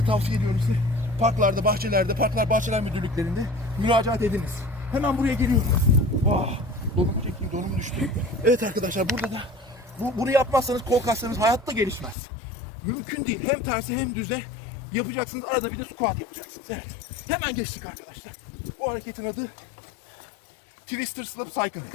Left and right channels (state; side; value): drops out; right; at 12.2 s